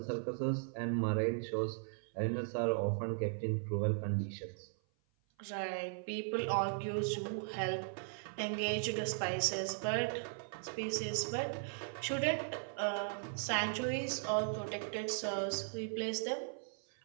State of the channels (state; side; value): silent; left; 53 dB below the other